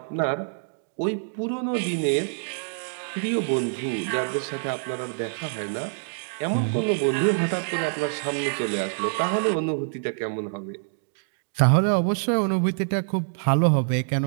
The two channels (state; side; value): silent; left; digital silence